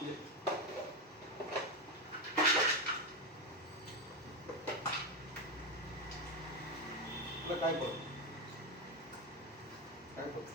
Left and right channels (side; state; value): both; normal; correlation 0.11